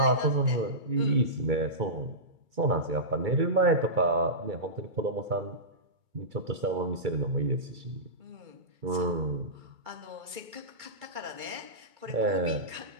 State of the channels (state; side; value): late; left; 2.3 ms